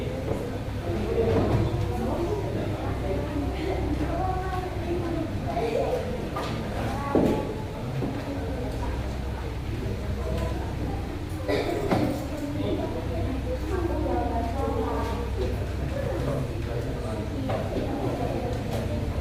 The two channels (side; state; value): both; identical; correlation 1.00